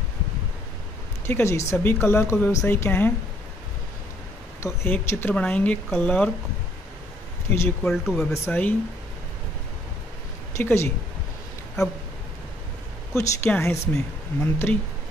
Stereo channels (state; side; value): normal; both; correlation 0.65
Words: ठीक है जी, सभी क्लर्क और व्यवसायी क्या हैं, तो एक चित्र बनाएंगे, क्लर्क इज इक्वल टू व्यवसायी। ठीक है जी। अब कुछ क्या है इसमें, मंत्री।